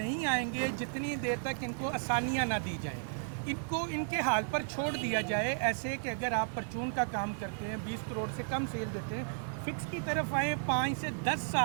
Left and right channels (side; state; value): left; silent; digital silence